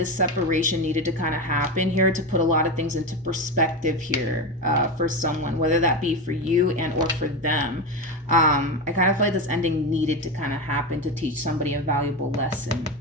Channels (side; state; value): both; normal; correlation 0.18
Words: separation needed to kind of happen here to put a lot of things into perspective here for someone, whether that be for you and or for them. I kind of feel like this ending needed to kind of happen to teach somebody a valuable lesson.